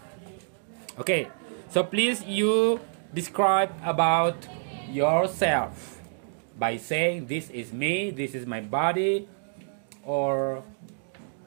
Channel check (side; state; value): left; silent; digital silence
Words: Okay. So please you describe about yourself by saying this is me, this is my body, or